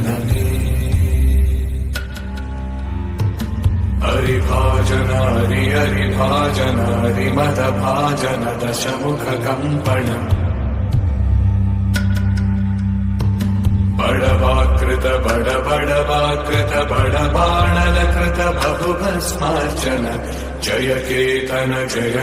हरिभाजन हरिभाजन हरिमद भाजन दशमुख कंपन बड़वाकृत बड़वाकृत बड़बाणलकृत बहुभस्मार्चन जय केतन जय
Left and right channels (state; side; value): identical; both; correlation 1.00